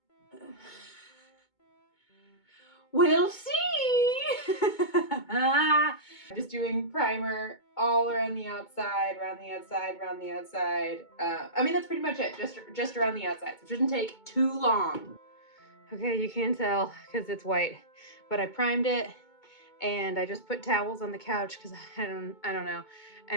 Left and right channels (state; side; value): late; right; 2.2 ms